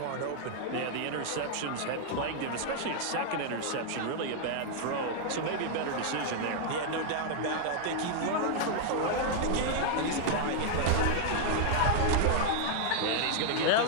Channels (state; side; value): different; both; correlation -0.01